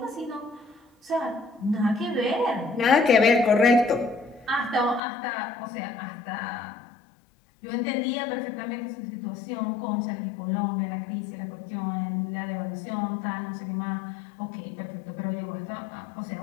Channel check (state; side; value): drops out; right; at 5.0 s